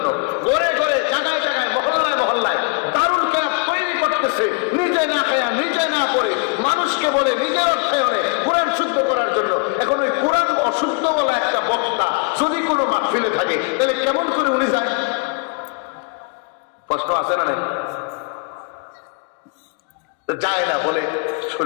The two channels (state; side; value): quieter; right; 33.0 dB